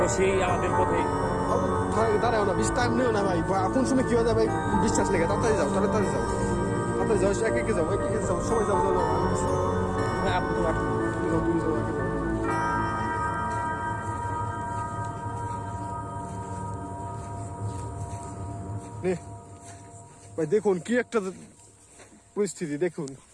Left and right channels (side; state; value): both; identical; correlation 1.00